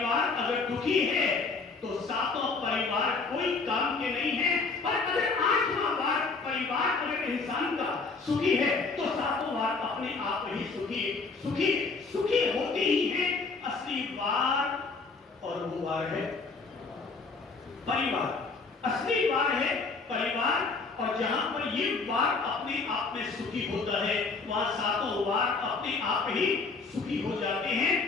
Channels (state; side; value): quieter; right; 4.2 dB